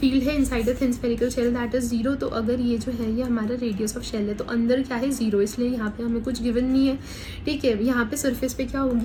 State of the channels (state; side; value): identical; both; correlation 1.00